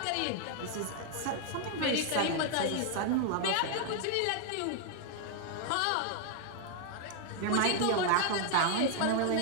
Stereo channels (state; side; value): different; both; correlation 0.00